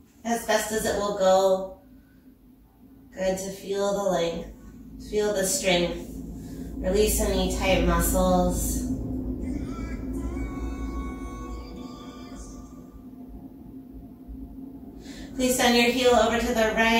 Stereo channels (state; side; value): identical; both; correlation 1.00